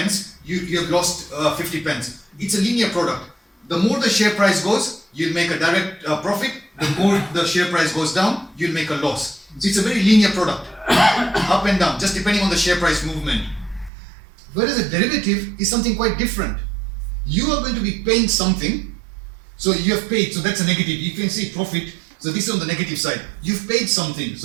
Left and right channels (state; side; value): drops out; left; at 13.9 s